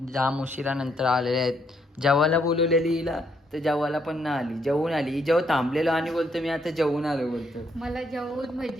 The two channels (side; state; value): both; normal; correlation 0.73